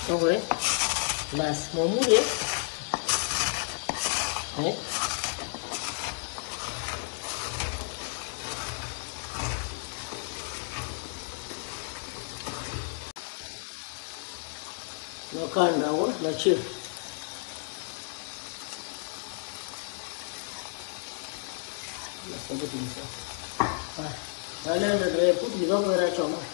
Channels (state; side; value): silent; right; 57 dB below the other